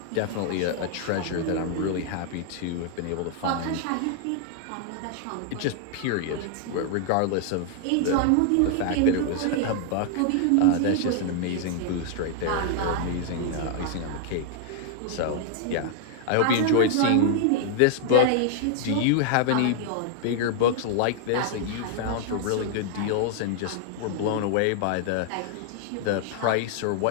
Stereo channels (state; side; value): different; both; correlation 0.00